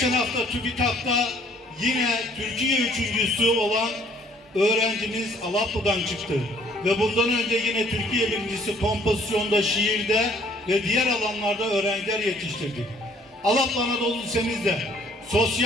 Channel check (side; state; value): both; normal; correlation 0.60